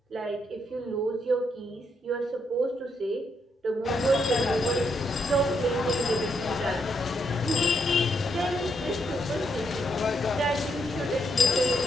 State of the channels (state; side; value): normal; both; correlation 0.77